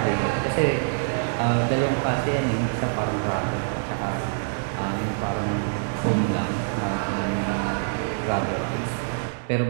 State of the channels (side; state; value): left; silent; digital silence